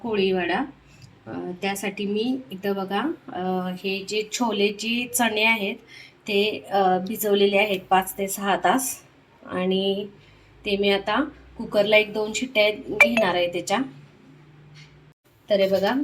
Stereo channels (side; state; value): both; identical; correlation 1.00